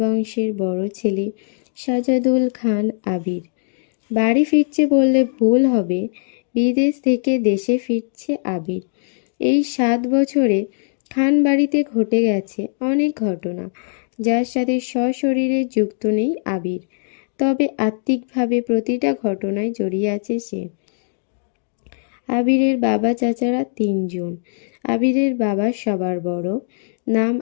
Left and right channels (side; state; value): right; silent; digital silence